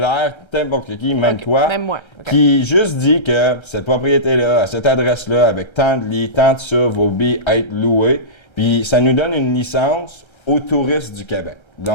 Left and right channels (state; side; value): late; right; 1.3 ms